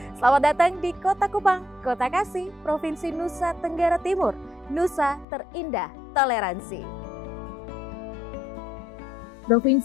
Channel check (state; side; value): drops out; right; at 5.2 s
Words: Selamat datang di Kota Kupang, Kota Kasih, Provinsi Nusa Tenggara Timur, Nusa Terindah Toleransi.